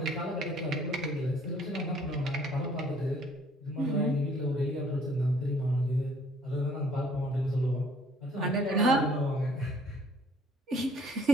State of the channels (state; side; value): normal; both; correlation 0.59